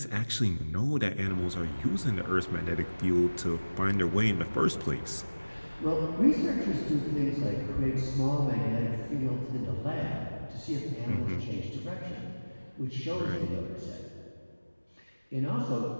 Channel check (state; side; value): inverted; both; correlation -1.00